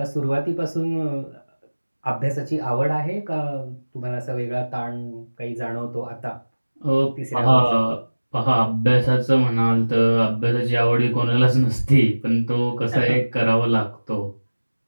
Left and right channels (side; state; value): both; inverted; correlation -1.00